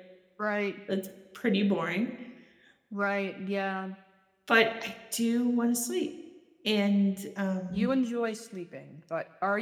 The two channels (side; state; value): both; identical; correlation 1.00